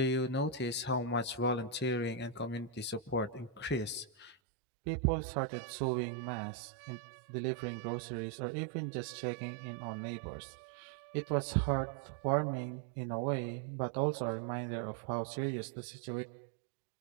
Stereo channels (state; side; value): drops out; left; at 4.4 s